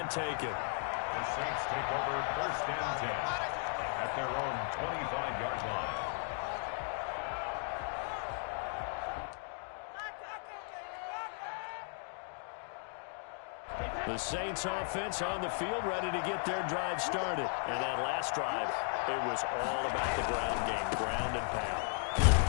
taken. The Saints take over first and 10 at their own 25-yard line. The Saints offense on the field ready to get their drive started. And that last drive, it was all about the ground game, ground and pound.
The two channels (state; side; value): silent; right; 54 dB below the other